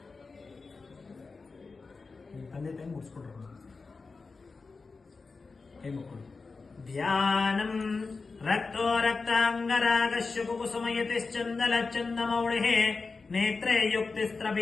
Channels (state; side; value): quieter; right; 4.2 dB